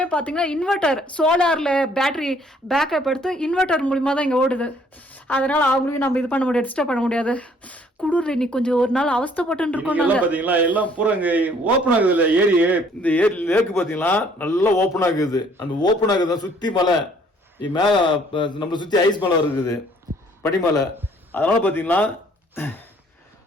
பார்த்தீங்கன்னா இன்வெர்டர், சோலாரில் பேட்டரி பேக்கப் எடுத்து இன்வெர்டர் மூலிமா தான் இங்கே ஓடுது. அதனால அவங்களையும் நம்ம இது பண்ண முடியாது, டிஸ்டர்ப் பண்ண முடியாது. குளிர் இன்னைக்கு கொஞ்சம் ஒரு நாள் அவஸ்தைப்பட்டு இருக்கோம். பாத்தீங்களா எல்லாம் பூரா இங்க ஓப்பன் ஆகுது இல்ல ஏரி. இந்த ஏரி லேக்கு பாத்தீங்களா நல்லா ஓப்பன் ஆகுது. அந்த ஓப்பன் ஆகுது சுத்தி மலை மேல நம்மளை சுத்தி ஐஸ் மலை இருக்குது, பனிமலை. அதனால பாத்தீங்கன்னா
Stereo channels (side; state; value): both; normal; correlation 0.61